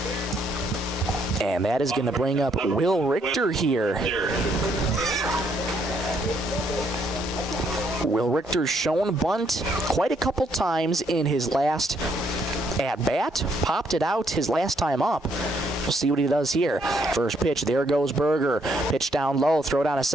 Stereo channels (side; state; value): both; normal; correlation 0.71